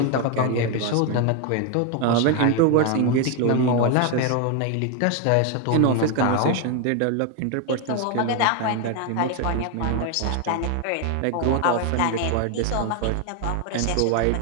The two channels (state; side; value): different; both; correlation 0.01